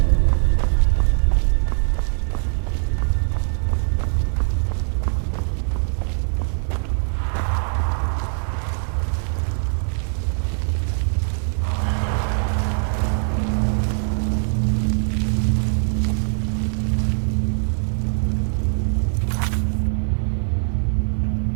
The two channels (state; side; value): silent; left; 55 dB below the other